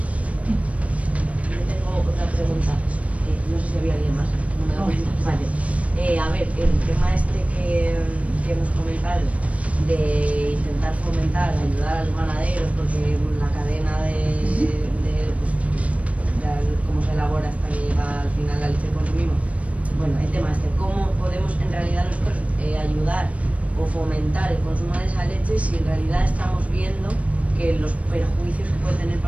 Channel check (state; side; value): late; left; 0.065 ms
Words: Yo tengo otra pregunta, no sé si había alguien más. No. Vale. A ver, el tema este que hemos comentado de intentar fomentar, ayudar a los ganaderos, porque la cadena de cómo se elabora hasta que llega al final la leche que consumimos. Bueno, el tema este, ¿cómo podemos en realidad nosotros ayudar o fomentar el consumo de esa leche si en realidad estamos viendo que los perjuicios que puede tener